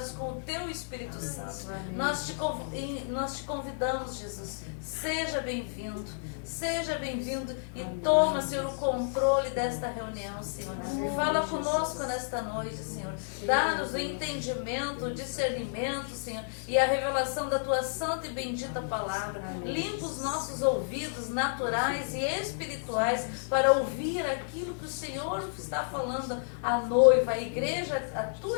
com o Teu Espírito Santo. Nós te convidamos, Jesus. Seja bem-vindo. Seja bem-vindo e toma, Senhor, o controle desta reunião, Senhor. Fala conosco nesta noite, Senhor. Dá-nos o entendimento, o discernimento, Senhor, e a revelação da Tua santa e bendita palavra. Limpa os nossos ouvidos naturais e espirituais para ouvir aquilo que o Senhor está falando à noiva, à igreja, à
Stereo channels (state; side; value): silent; right; digital silence